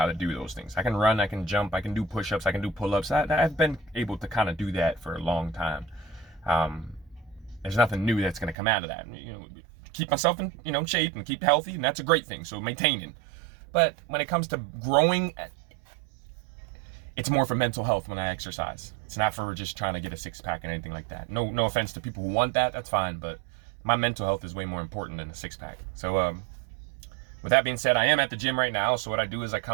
to do those things. I can run, I can jump, I can do push-ups, I can do pull-ups. I've been able to kind of do that for a long time. There's nothing new that's going to come out of that. Keep myself in shape and keep healthy, and that's a great thing. So maintaining. But when it comes to growing, it's more for mental health when I exercise. It's not for just trying to get a six-pack and anything like that. No offense to people who want that. That's fine, but my mental health is way more important than a six-pack. So with that being said, I am at the gym right now. So what I do is I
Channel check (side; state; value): left; drops out; at 8.6 s